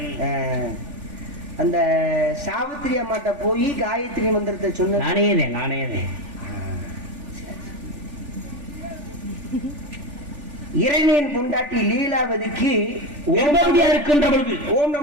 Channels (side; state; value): left; late; 3.4 ms